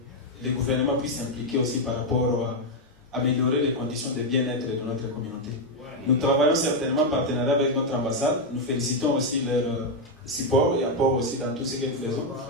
les gouvernements puissent s'impliquer aussi par rapport à améliorer les conditions de bien-être de notre communauté. Nous travaillons certainement en partenariat avec notre ambassade. Nous félicitons aussi leur support et apport aussi dans tout ce que nous faisons.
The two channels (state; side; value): normal; both; correlation 0.02